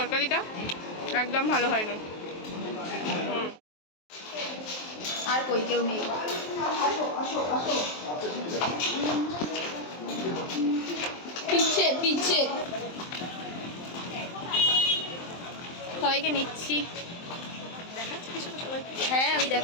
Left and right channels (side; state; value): right; late; 23 ms